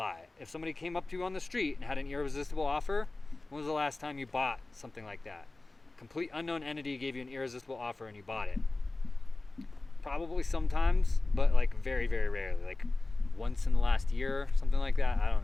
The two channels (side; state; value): right; quieter; 3.1 dB